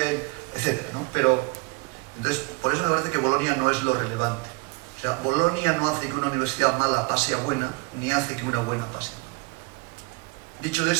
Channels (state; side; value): quieter; left; 28.1 dB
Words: etcétera, ¿no? Pero, entonces, por eso me parece que Bolonia no es lo relevante. O sea, Bolonia no hace que una universidad mala pase a buena, ni hace que una buena pase a mala. Dicho